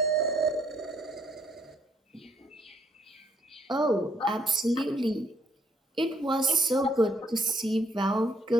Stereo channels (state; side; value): normal; both; correlation 0.67